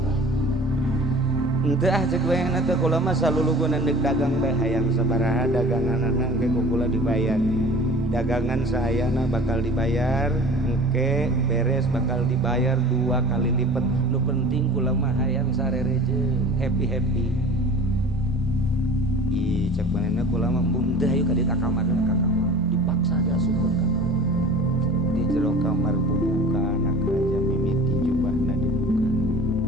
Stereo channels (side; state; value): both; normal; correlation 0.42